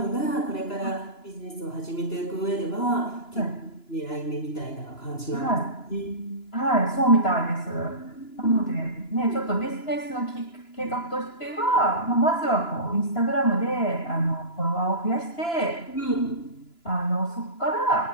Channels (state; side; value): late; right; 2.9 ms